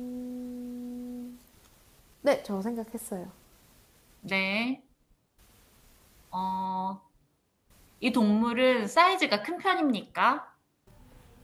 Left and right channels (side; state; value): both; identical; correlation 1.00